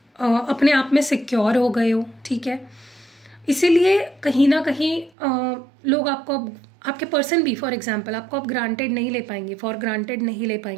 अपने आप में सिक्योर हो गए हो, ठीक है। इसीलिए कहीं ना कहीं लोग आपको, आपके पर्सन भी फॉर एग्जांपल, आपको आप ग्रांटेड नहीं ले पाएंगे, फॉर ग्रांटेड नहीं ले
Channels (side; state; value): left; drops out; at 5.1 s